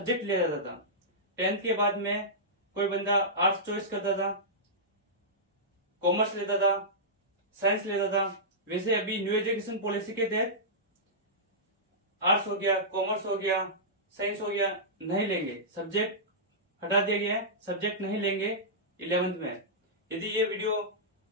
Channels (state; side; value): normal; both; correlation -0.15